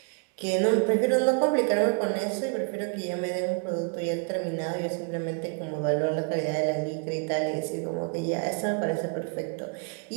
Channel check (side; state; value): left; quieter; 37.3 dB